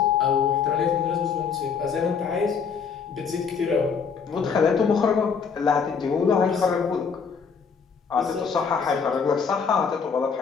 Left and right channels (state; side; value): quieter; right; 6.0 dB